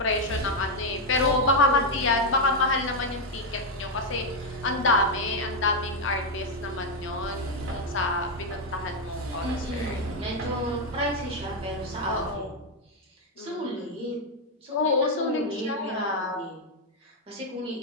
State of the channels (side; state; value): both; normal; correlation 0.03